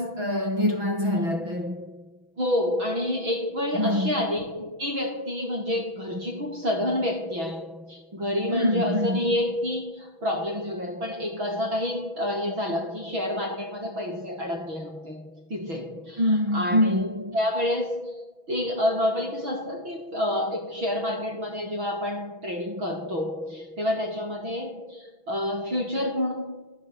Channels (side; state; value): left; late; 6.1 ms